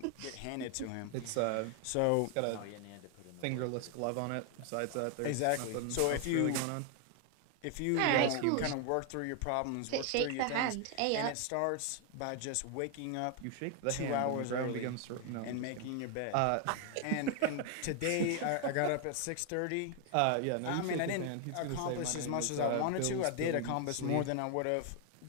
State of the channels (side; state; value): both; different; correlation 0.00